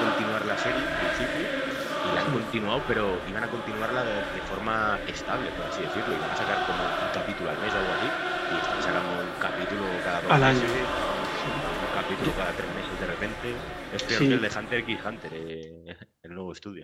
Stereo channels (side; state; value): both; identical; correlation 1.00